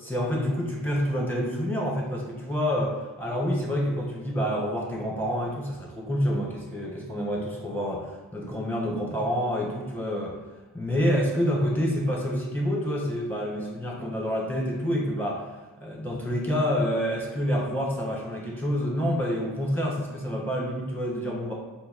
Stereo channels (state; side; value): normal; both; correlation 0.65